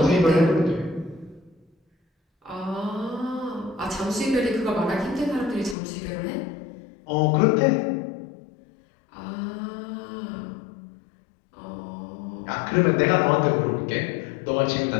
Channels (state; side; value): drops out; right; at 5.8 s